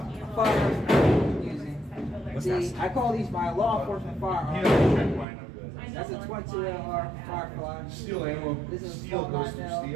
of firearms I'm using. What's See, that? I call these my law enforcement You firearms. know, check mine up good. That's a 22 Firefly. Steel ammo. This is a Steel small goes through 9mm.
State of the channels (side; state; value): left; drops out; at 5.2 s